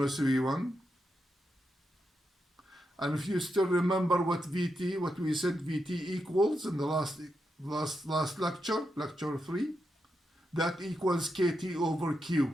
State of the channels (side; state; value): both; normal; correlation 0.85